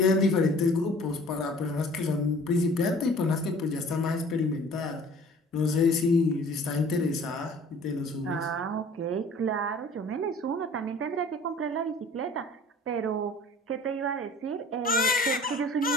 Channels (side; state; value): both; normal; correlation 0.49